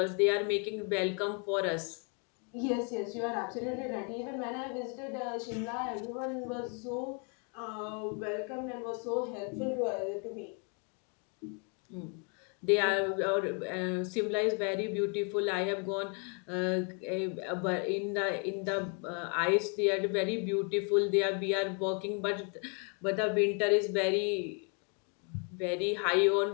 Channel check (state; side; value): quieter; right; 37.7 dB